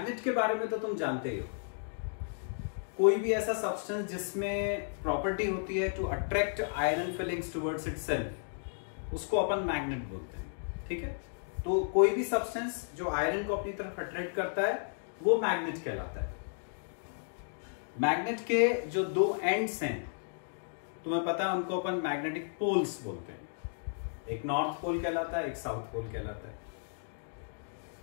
के बारे में तो तुम जानते ही हो, कोई भी ऐसा सब्सटेंस जिसमें प्रॉपर्टी होती है to attract iron filings towards itself, उसको अपन मैग्नेट बोलते हैं। ठीक है, तो कोई भी सब्सटेंस जो आयरन को अपनी तरफ अट्रैक्ट करता है वो मैग्नेट कहलाता है। मैग्नेट के जो दो एंड्स हैं तुम्हें पता है, उनको अपन मैग्नेटिक पोल्स बोलते हैं। एक नॉर्थ पोल कहलाता है, एक साउथ पोल कहलाता है।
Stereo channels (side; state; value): right; silent; digital silence